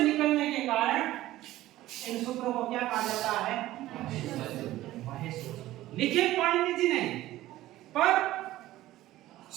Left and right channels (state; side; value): quieter; left; 15.5 dB